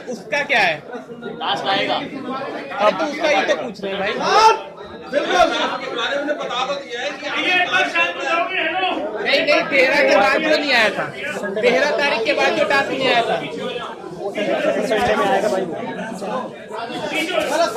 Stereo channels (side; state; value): both; identical; correlation 1.00